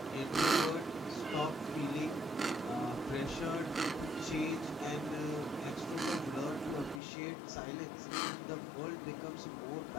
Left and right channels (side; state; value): right; drops out; at 7.0 s